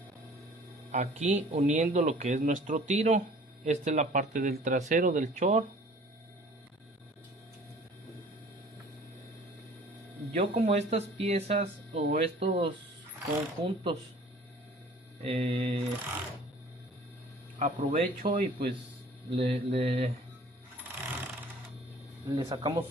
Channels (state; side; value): normal; both; correlation 0.50